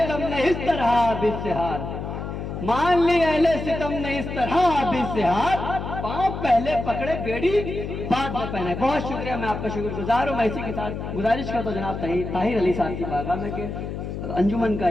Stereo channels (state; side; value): noise; left; hum, 6 dB below the sound